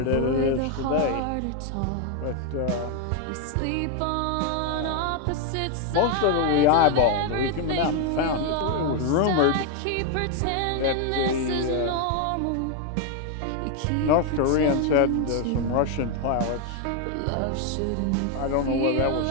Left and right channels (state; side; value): different; both; correlation 0.01